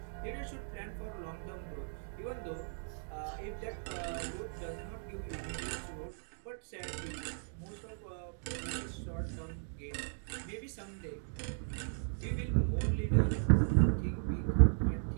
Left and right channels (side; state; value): left; silent; digital silence